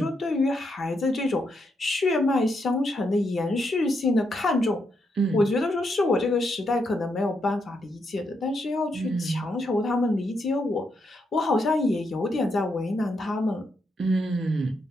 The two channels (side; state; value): both; normal; correlation 0.80